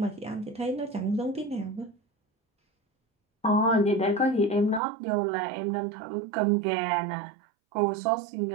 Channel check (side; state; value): left; drops out; at 4.8 s